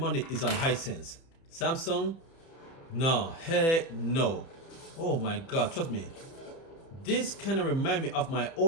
is on Hisense. Samsung, no, heck no. Oh my God, trust me. This kind of remind me of my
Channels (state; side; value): late; right; 30 ms